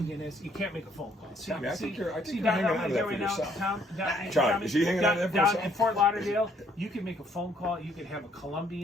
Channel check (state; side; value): normal; both; correlation 0.66